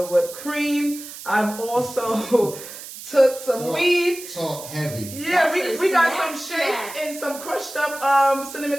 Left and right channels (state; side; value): noise; right; hiss, 13 dB below the sound